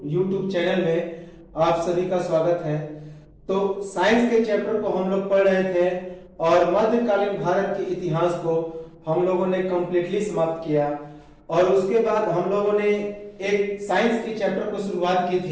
चैनल में आप सभी का स्वागत है। तो साइंस के चैप्टर को हम लोग पढ़ रहे थे और मध्यकालीन भारत के इतिहास को हम लोगों ने कंप्लीटली समाप्त किया और उसके बाद हम लोगों ने एक साइंस के चैप्टर को शुरुआत की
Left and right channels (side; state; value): both; identical; correlation 1.00